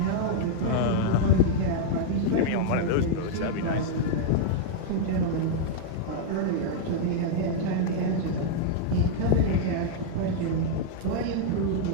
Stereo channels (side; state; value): both; different; correlation -0.01